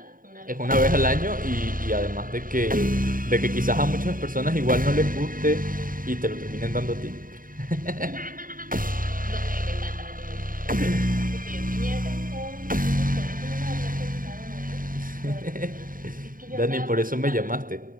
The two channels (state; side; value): late; left; 0.40 ms